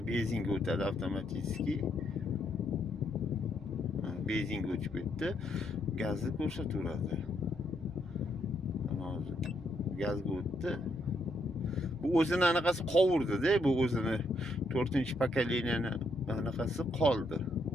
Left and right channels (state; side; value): normal; both; correlation 0.75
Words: benzinga o'tadi avtomatik. Benzinga o'chib ketdi. Gazni ko'rsataveradi. Hozir gazga o'tdi. Bu o'zini anaqasi qovurdi-da, bu o'zini 4-pakaleniyaning anaqasi qoldi